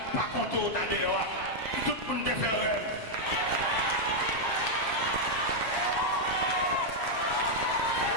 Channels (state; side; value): late; right; 7.5 ms